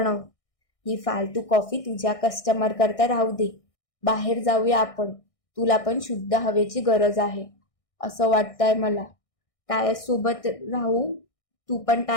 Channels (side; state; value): right; late; 1.6 ms